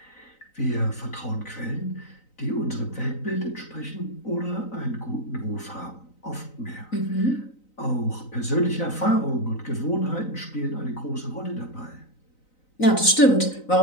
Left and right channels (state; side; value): late; right; 3.9 ms